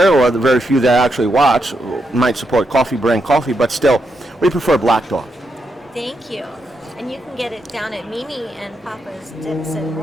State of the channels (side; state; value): both; normal; correlation 0.82